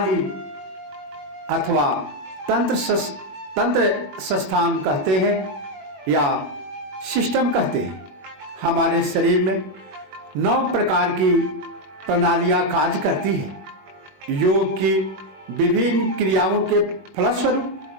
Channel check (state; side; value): late; left; 21 ms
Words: अथवा तंत्र संस्थान कहते हैं या सिस्टम कहते हैं। हमारे शरीर में 9 प्रकार की प्रणालियां कार्य करती हैं। योग की विभिन्न क्रियाओं के फलस्वरूप